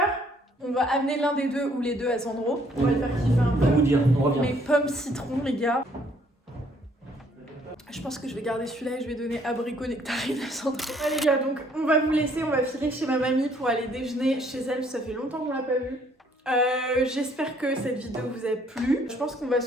On va amener l'un des deux ou les deux à Sandro, on va le faire kiffer un On va peu. vous dire, on revient. Les pommes citron, les gars. Je pense que je vais garder celui-là et je vais donner abricot nectarine à Sandro. Ouais les gars, donc on va vous laisser, on va filer chez ma mamie pour aller déjeuner chez elle, ça fait longtemps qu'on l'a pas vue. J'espère que cette vidéo vous a plu. Je pense qu'on va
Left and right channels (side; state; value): both; normal; correlation 0.64